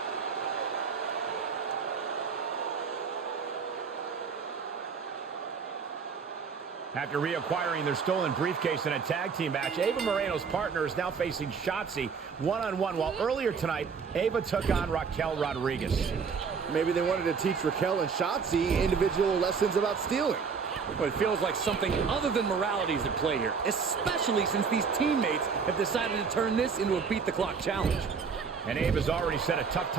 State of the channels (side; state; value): left; quieter; 5.7 dB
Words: After reacquiring their stolen briefcase in a tag team match, Ava Moreno's partner is now facing Shotzi one-on-one, while earlier tonight, Ava took on Raquel Rodriguez. Maybe they wanted to teach Raquel and Shotzi individual lessons about stealing. But it feels like something other than morality is at play here, especially since these teammates have decided to turn this into a beat-the-clock challenge. And Ava's already set a tough